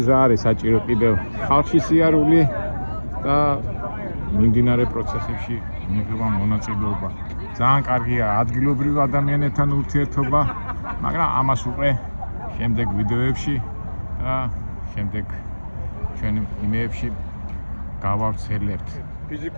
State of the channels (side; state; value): both; inverted; correlation -1.00